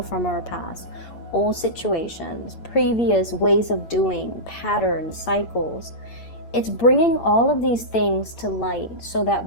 from our past, old situations, previous ways of doing, patterns, cycles. It's bringing all of these things to light so that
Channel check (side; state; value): right; late; 8.8 ms